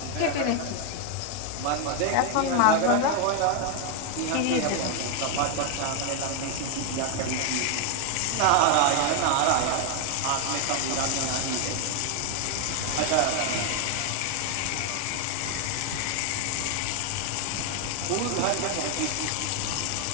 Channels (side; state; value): both; different; correlation 0.01